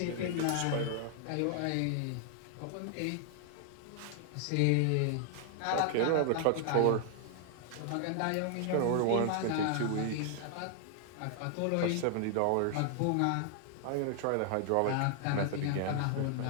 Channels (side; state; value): both; different; correlation 0.00